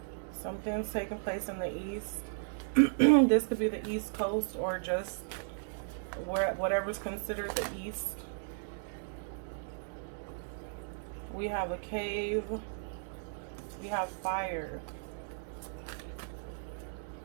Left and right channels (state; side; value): silent; left; digital silence